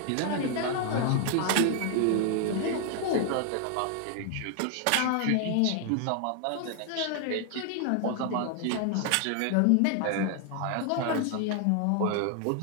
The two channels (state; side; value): different; both; correlation 0.00